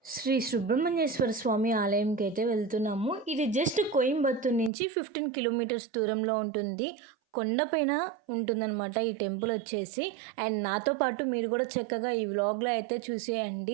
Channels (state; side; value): drops out; left; at 4.7 s